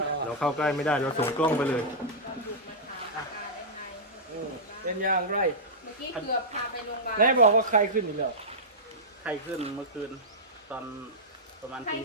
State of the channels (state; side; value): normal; both; correlation -0.11